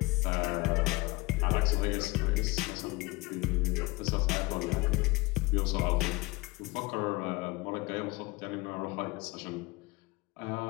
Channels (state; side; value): quieter; right; 23.3 dB